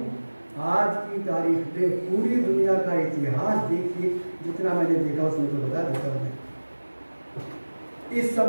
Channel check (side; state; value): both; inverted; correlation -1.00